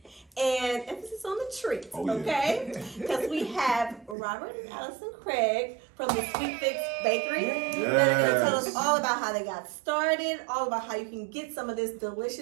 And emphasis on the treat, okay? Because we have Robert and Allison Craig from the Sweet Fix Bakery. Yes. They're going to tell us all about how they got started, all about how you can get some of this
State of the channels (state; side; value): drops out; left; at 4.2 s